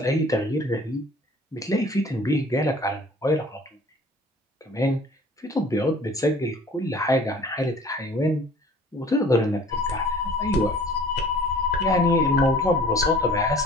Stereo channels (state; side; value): normal; both; correlation 0.49